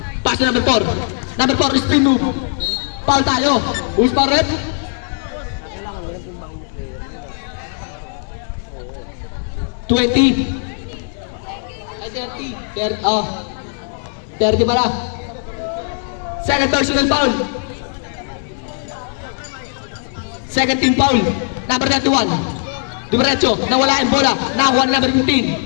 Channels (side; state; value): right; silent; 62 dB below the other